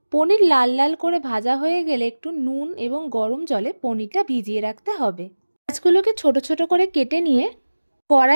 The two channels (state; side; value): inverted; both; correlation -1.00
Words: পনির লাল লাল করে ভাজা হয়ে গেলে একটু নুন এবং গরম জলে পনিরটা ভিজিয়ে রাখতে হবে। মাছগুলোকে ছোট ছোট করে কেটে নিয়ে